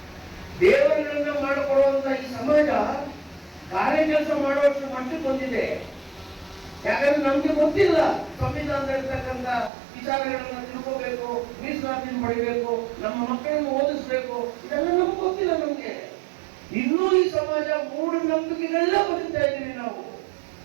ದೇವರುಗಳನ್ನ ಮಾಡಿಕೊಡುವಂತ ಈ ಸಮಾಜ ಕಾರ್ಯ ಕೆಲಸ ಮಾಡುವಷ್ಟು ಮಟ್ಟಕ್ಕೆ ಬಂದಿದೆ. ಯಾಕಂದ್ರೆ ನಮ್ಗೆ ಗೊತ್ತಿಲ್ಲ ಸಂವಿಧಾನದಲ್ಲಿರ್ತಕ್ಕಂಥ ವಿಚಾರಗಳನ್ನ ತಿಳ್ಕೋಬೇಕು, ಮೀಸಲಾತಿನ ಪಡಿಬೇಕು, ನಮ್ಮ ಮಕ್ಕಳನ್ನು ಓದಿಸ್ಬೇಕು, ಇದೆಲ್ಲ ನಮ್ಗೆ ಗೊತ್ತಿಲ್ಲ. ನಮ್ಗೆ ಇನ್ನೂ ಈ ಸಮಾಜ ಮೂಢನಂಬಿಕೆಗಳೆಲ್ಲ ಬದುಕ್ತಾ ಇದ್ದೀವಿ ನಾವು.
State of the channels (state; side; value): drops out; left; at 9.7 s